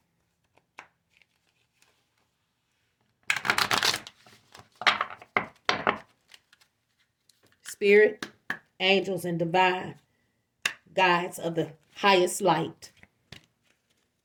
Spirit, angels, and divine guides of the highest light.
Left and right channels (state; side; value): identical; both; correlation 1.00